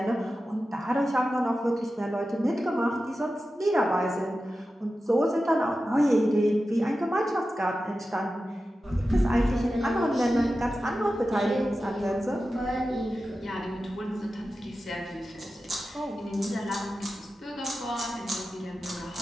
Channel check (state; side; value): normal; both; correlation 0.93